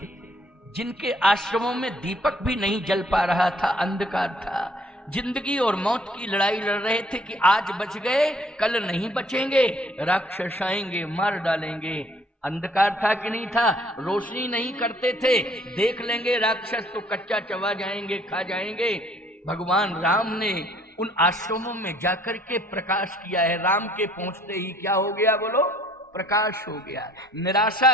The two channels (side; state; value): both; normal; correlation 0.60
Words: जिनके आश्रमों में दीपक भी नहीं जल पा रहा था, अंधकार था, जिंदगी और मौत की लड़ाई लड़ रहे थे कि आज बच गए कल नहीं बचेंगे, राक्षस आएंगे मार डालेंगे। अंधकार था कि नहीं था? रोशनी नहीं करते थे, देख लेंगे राक्षस तो कच्चा चबा जाएंगे, खा जाएंगे। भगवान राम ने उन आश्रमों में जाकर के प्रकाश किया है। राम के पहुंचते ही क्या हो गया बोलो? प्रकाश हो गया।